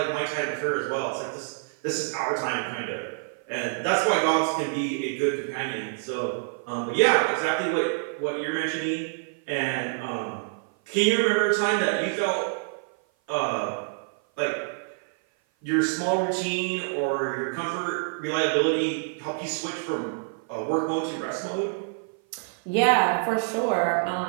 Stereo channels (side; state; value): left; silent; 55 dB below the other